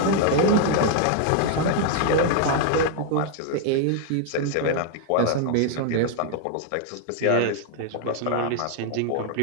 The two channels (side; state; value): both; different; correlation 0.00